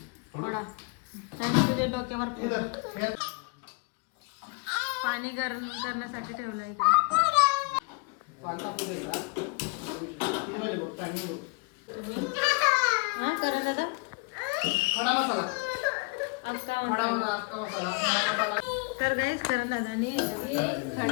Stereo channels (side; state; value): right; quieter; 31.3 dB